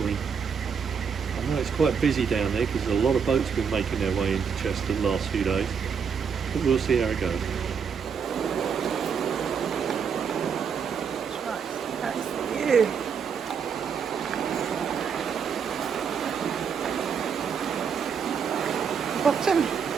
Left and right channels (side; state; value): left; quieter; 6.6 dB